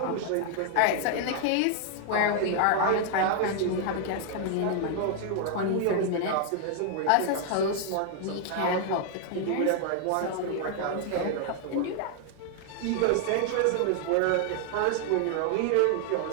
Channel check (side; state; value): both; different; correlation 0.00